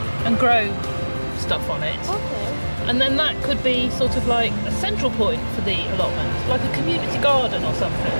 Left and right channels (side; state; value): both; inverted; correlation -1.00